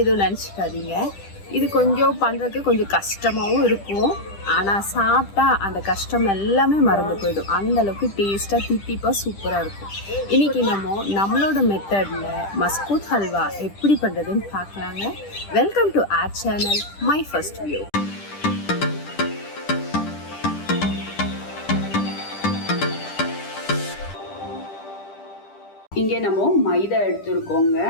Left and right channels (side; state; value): right; late; 10 ms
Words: எதுவும் நினச்சிக்காதீங்க. இது கொஞ்சம் பண்ணுறதுக்கு கொஞ்சம் கஷ்டமாகவும் இருக்கும். ஆனால் சாப்பிட்டா அந்த கஷ்டம் எல்லாமே மறந்து போயிடும். அந்தளவுக்கு டேஸ்ட்டாக தித்திப்பாக சூப்பராக இருக்கும். இன்றைக்கி நம்மளோட மெத்தடில் மஸ்கூத் ஹல்வா எப்படி பண்ணுறதுன்னு பார்க்கலாங்க. Welcome to R channel my first view. இங்கே நம்ம மைதா எடுத்துருக்கோங்க.